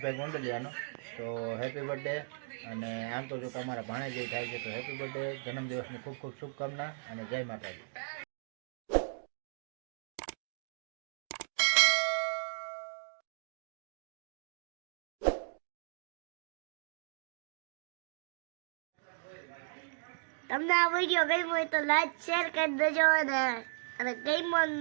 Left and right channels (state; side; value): silent; left; digital silence